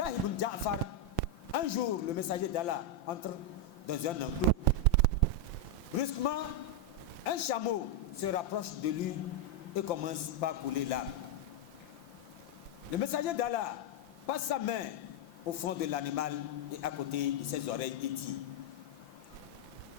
ibn Ja'far, un jour, le messager d'Allah entre dans un enclos. Brusquement, un chameau se rapproche de lui et commence par couler l'âme. Le messager d'Allah passe sa main au front de l'animal et à côté de ses oreilles et dit:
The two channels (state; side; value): late; right; 5.8 ms